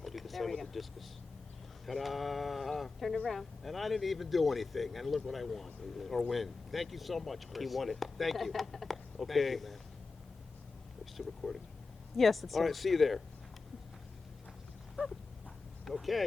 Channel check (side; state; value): right; quieter; 4.1 dB